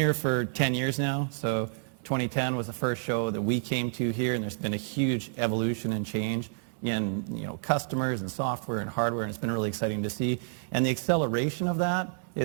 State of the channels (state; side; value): silent; left; 58 dB below the other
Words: for 10 years now, so 2010 was the first show that we came to here, and there's been a huge evolution and change in customers and software and hardware, and it's been really exciting to see. And the acceleration of that